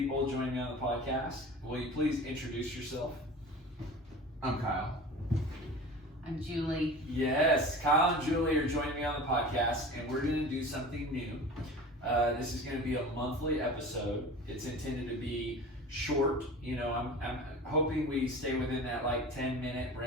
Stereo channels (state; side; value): normal; both; correlation 0.37